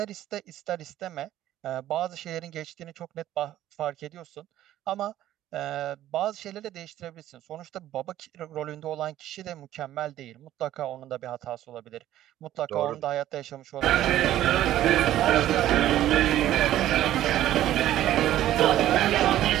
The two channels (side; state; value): left; quieter; 13.1 dB